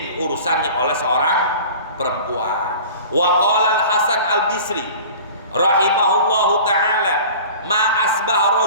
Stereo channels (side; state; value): both; inverted; correlation -0.41